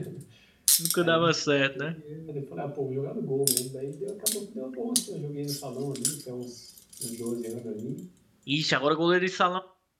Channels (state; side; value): identical; both; correlation 1.00